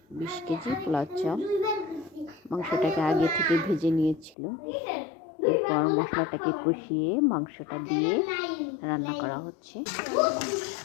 20 কেজি পোলাও চাল। মাংসটাকে আগে থেকে ভেজে নিয়েছিল, এরপর মশলাটাকে কষিয়ে মাংসটা দিয়ে রান্না করা হচ্ছে।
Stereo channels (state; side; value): drops out; right; at 4.4 s